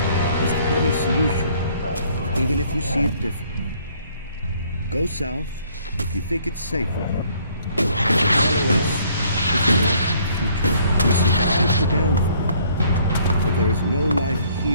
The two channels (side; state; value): both; inverted; correlation -0.62